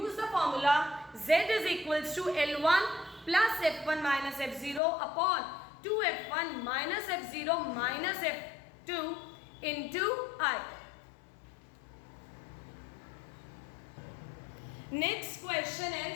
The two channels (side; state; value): right; drops out; at 4.8 s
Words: the formula Z is equals to L1 plus F1 minus F0 upon 2F1 minus F0 minus F2 into I. Next question